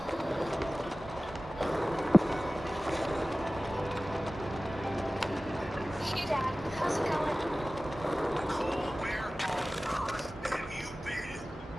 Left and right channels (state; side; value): normal; both; correlation 0.97